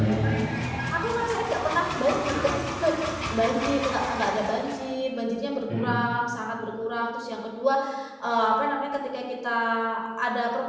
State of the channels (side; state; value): both; identical; correlation 1.00